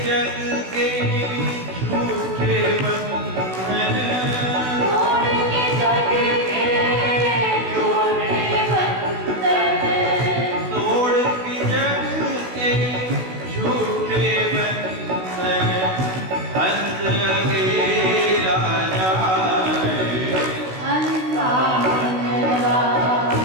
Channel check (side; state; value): left; late; 16 ms